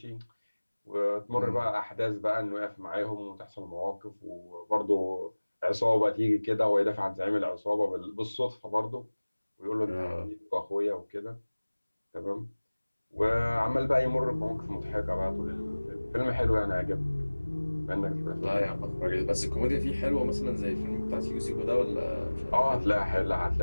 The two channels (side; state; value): both; inverted; correlation -1.00